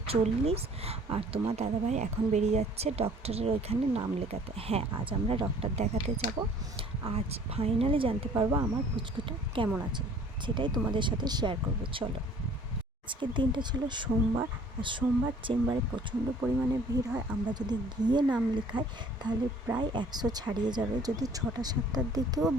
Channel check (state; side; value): normal; both; correlation 0.53